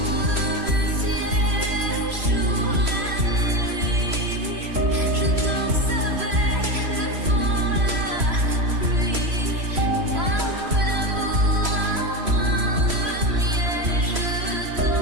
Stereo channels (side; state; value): left; late; 3.0 ms